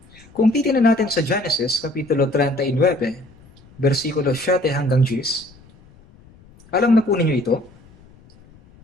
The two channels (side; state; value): left; noise; rumble, 26 dB below the sound